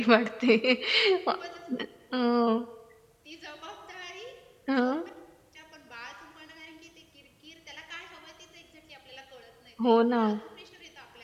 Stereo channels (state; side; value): identical; both; correlation 1.00